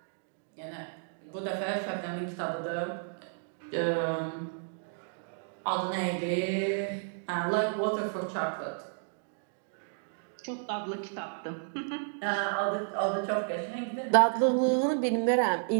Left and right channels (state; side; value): silent; left; digital silence